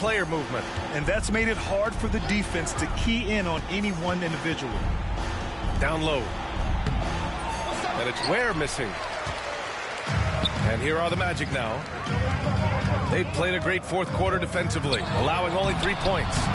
movement. And that's made it hard for the defense to key in on any one individual. Down low. And it's Ware missing. And here are the Magic now. They've played a great fourth quarter defensively, allowing only 3 points.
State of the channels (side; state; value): both; identical; correlation 1.00